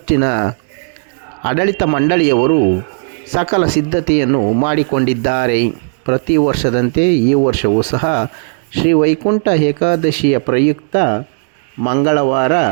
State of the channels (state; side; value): silent; left; 70 dB below the other